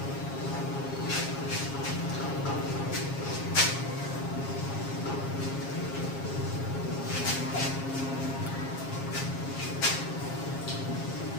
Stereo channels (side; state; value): right; late; 7.4 ms